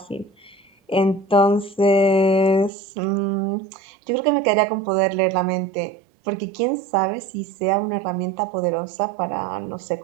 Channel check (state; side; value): drops out; left; at 2.7 s